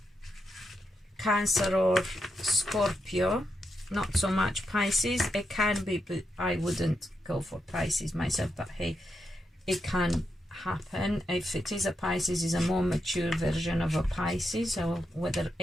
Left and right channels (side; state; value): both; normal; correlation 0.85